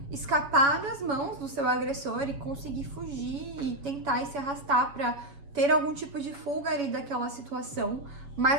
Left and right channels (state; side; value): late; left; 7.1 ms